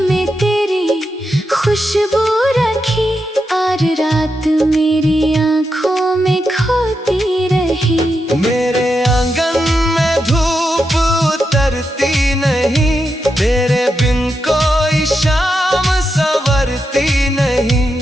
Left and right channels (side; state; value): both; normal; correlation 0.86